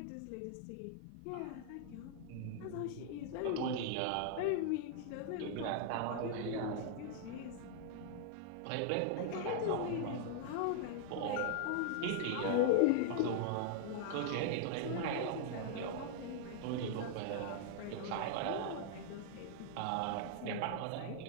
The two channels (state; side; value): different; both; correlation 0.00